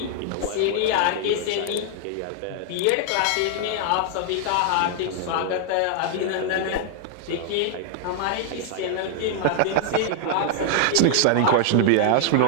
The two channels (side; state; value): both; different; correlation 0.00